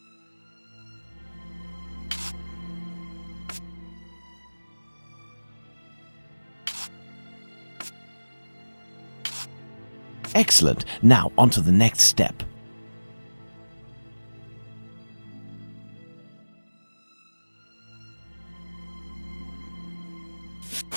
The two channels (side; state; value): both; inverted; correlation -1.00